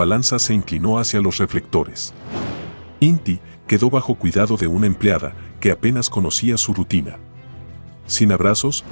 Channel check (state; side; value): inverted; both; correlation -1.00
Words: se inclinó hacia los reflectores. Inti quedó bajo cuidado de una empleada que apenas conocía su rutina. Sin abrazos,